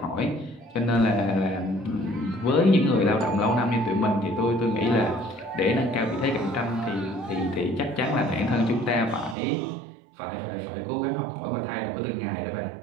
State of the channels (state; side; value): drops out; left; at 9.3 s